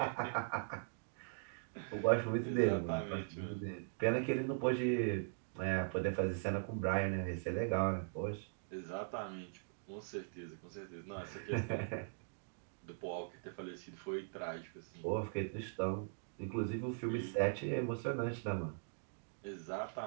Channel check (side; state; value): left; silent; digital silence